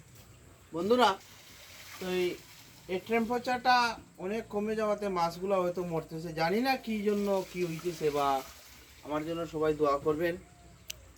বন্ধুরা তো এই টেম্পারেচারটা অনেক কমে যাওয়াতে মাছগুলো হয়তো মরতেছে, জানি না কী জন্য কী হইতেছে, বা আমার জন্য সবাই দোয়া করবেন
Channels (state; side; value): identical; both; correlation 1.00